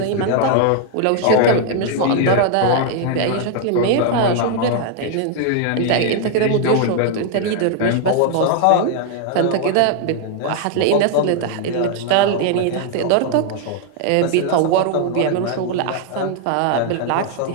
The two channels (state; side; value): different; both; correlation 0.00